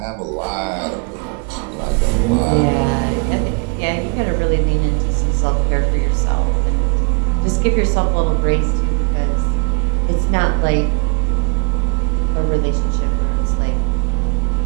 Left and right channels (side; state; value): left; quieter; 32.8 dB